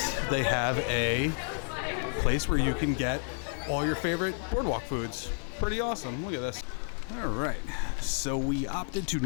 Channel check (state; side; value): silent; right; 57 dB below the other